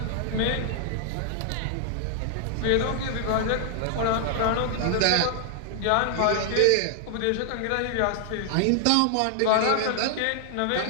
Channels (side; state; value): both; different; correlation 0.00